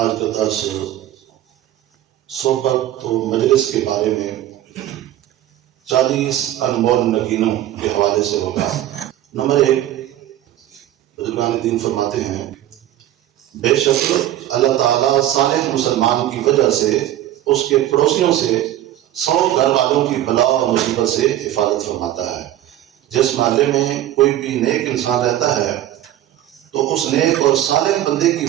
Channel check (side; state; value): left; quieter; 12.9 dB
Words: کا درس صحبت و مجلس کے بارے میں 40 انمول نگینوں کے حوالے سے ہوگا۔ نمبر 1، بزرگان دین فرماتے ہیں بے شک اللہ تعالیٰ صالح مسلمان کی وجہ سے اس کے پڑوسیوں سے 100 گھر والوں کی بلا اور مصیبت سے حفاظت فرماتا ہے۔ جس محلے میں کوئی بھی نیک انسان رہتا ہے تو اس نیک اور صالح بندے کی